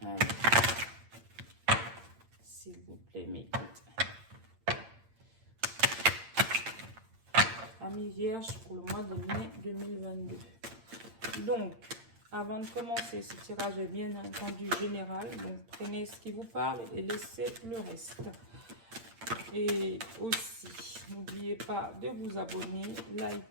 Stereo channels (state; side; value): late; left; 8.8 ms